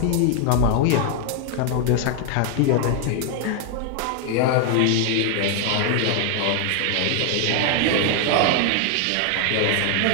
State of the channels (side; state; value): both; different; correlation 0.00